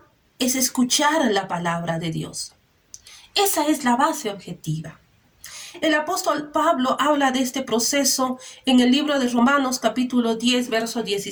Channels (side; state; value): both; identical; correlation 1.00